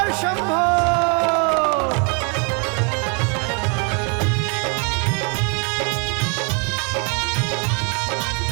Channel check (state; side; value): quieter; left; 35.3 dB